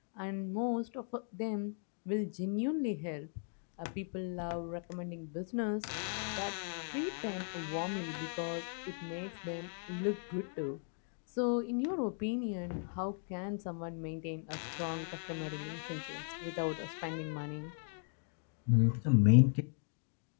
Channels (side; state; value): right; silent; 53 dB below the other